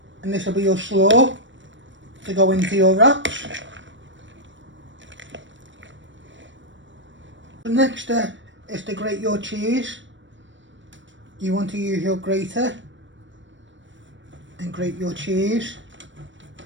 and this will be your slaw to go into your wraps. The next step is to grate your cheese. You want to use your grater and grate your cheese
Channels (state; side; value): late; left; 0.54 ms